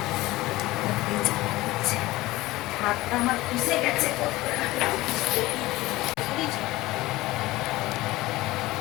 হাতটা আমার পুষে গেছে।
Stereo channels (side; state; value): right; quieter; 18.7 dB